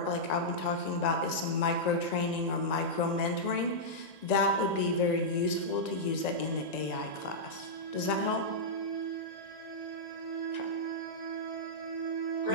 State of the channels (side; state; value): right; late; 1.9 ms